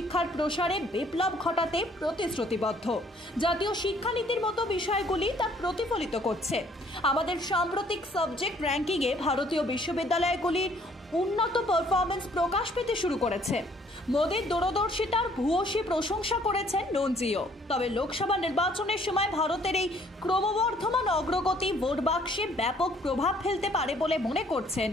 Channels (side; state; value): both; normal; correlation 0.61